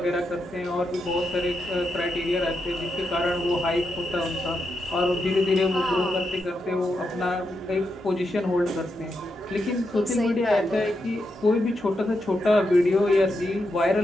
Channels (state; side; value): normal; both; correlation 0.84